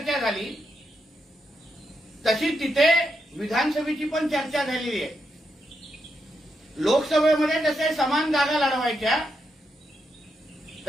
झाली तशी तिथे विधानसभेची पण चर्चा झालेली आहे. लोकसभेमध्ये जसे समान जागा लढवायच्या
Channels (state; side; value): normal; both; correlation 0.83